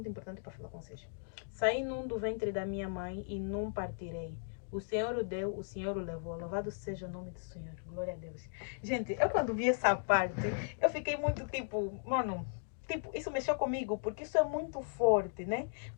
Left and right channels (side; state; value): right; silent; digital silence